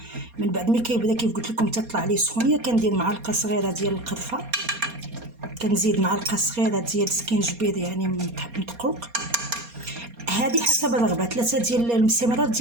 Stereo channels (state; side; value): late; left; 4.2 ms